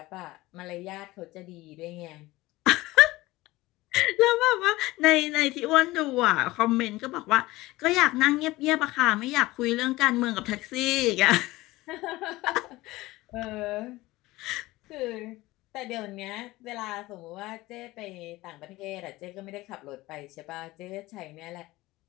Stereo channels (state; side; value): quieter; right; 19.1 dB